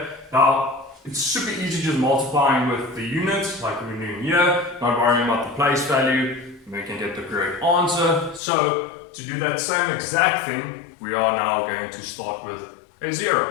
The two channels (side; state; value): right; drops out; at 8.4 s